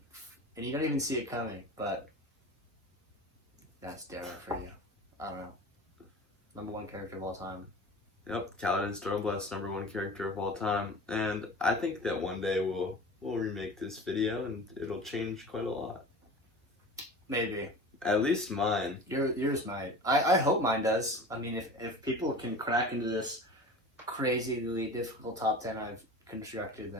and you don't even see it coming. But that's Darrow for you. I don't know. #1 character of all time. Yep, Kaladin Stormblight's #1 character of all time, and I think that one day we'll remake this video and it'll change quite a lot. Maybe. At least mine. Yours might. I hope mine does. I mean, if people can crack into this crazily difficult top 10 I've constructed,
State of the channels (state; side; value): normal; both; correlation 0.37